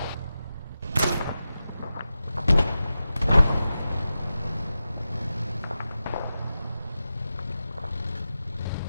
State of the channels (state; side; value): inverted; both; correlation -0.92